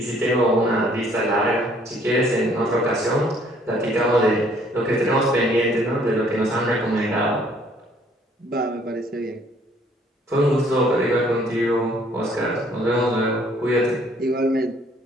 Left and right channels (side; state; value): both; normal; correlation 0.61